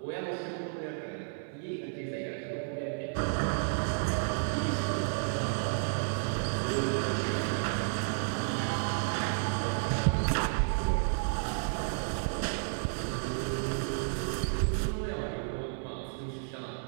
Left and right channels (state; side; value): silent; left; 56 dB below the other